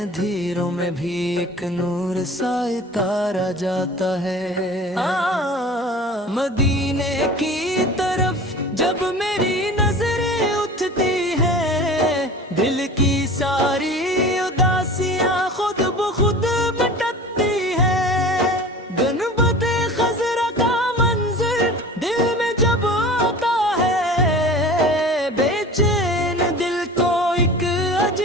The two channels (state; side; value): normal; both; correlation 0.39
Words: میں بھی ایک نور سا اتارا جاتا ہے۔ مدینے کی طرف جب میری نظریں اٹھتی ہے، دل کی ساری اداسیاں خود بخود مٹتی ہے۔ گنبد خضرا کا منظر دل میں جب آتا ہے، بے چین دل کو ایک